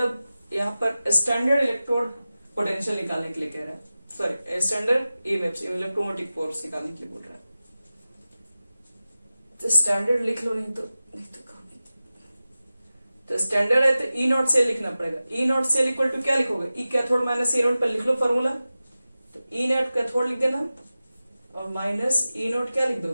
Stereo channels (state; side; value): inverted; both; correlation -0.95